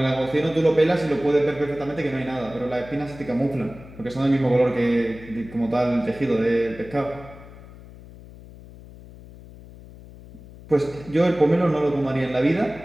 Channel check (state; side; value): noise; left; hum, 18 dB below the sound